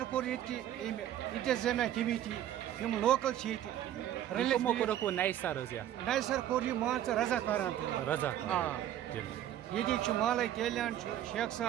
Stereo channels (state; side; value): quieter; left; 11.6 dB